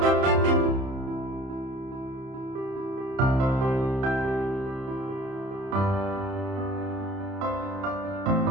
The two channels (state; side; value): late; left; 31 ms